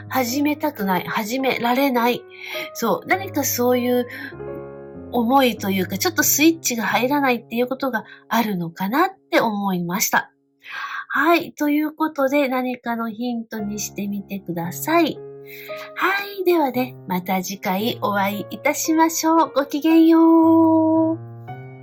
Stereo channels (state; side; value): identical; both; correlation 1.00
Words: 始めたくない、始められない。そう、何かそういう思いというか、ちょっとスイッチが入らないっていうことがあるのかなって思いました。はい。ということで、何かのヒントにしてみてください。はい。ではね、また次回お会いいたしましょう。ごきげんよう。